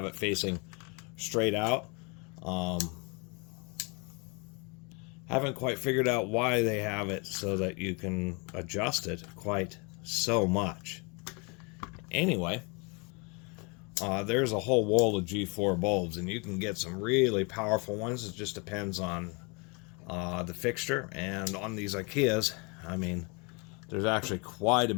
it facing straight out. Haven't quite figured out why they have it so that you can adjust it quite so much. Anyway, there's a whole wall of G4 bulbs, and you can get some really powerful ones. It just depends on the fixture. And on these Ikeas, I mean, there's actually quite a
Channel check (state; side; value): quieter; right; 30.7 dB